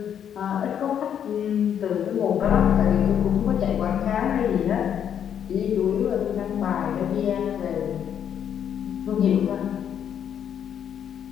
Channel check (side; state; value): right; quieter; 8.9 dB